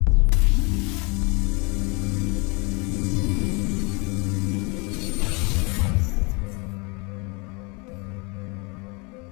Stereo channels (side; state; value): right; quieter; 29.5 dB